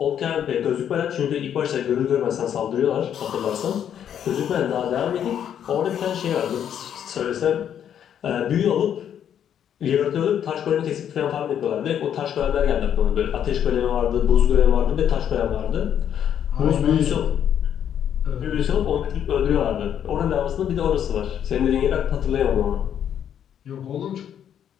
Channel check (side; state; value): right; quieter; 9.3 dB